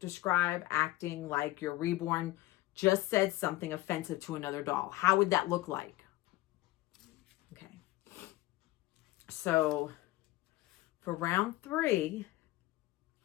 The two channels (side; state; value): right; quieter; 17.9 dB